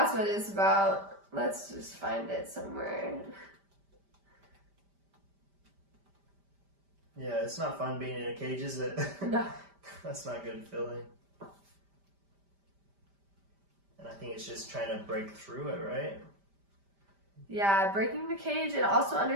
what it's about. Let's just find it somewhere. Yeah, it's not fun being in a cage, is it? No. That's not a good feeling. And I think it's just trying to break through it, right? Yeah, breaking the cage, and also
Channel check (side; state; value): left; late; 5.1 ms